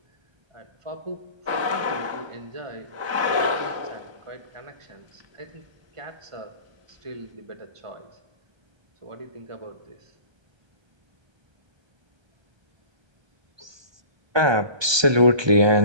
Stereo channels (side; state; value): left; late; 1.2 ms